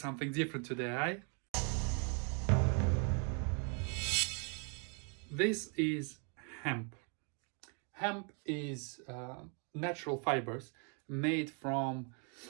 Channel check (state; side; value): quieter; left; 39.6 dB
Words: different today, eh? This is hemp. Hemp is natural fibers made from